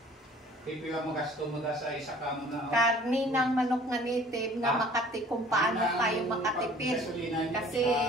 Pipila mo gasto mo sa isa ka mo na. karni ng manok na native na makati kung paano tayo makatipid. Kasi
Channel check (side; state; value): both; normal; correlation 0.51